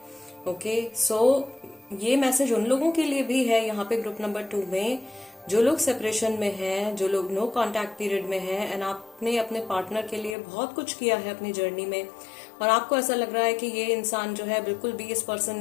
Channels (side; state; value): right; drops out; at 10.4 s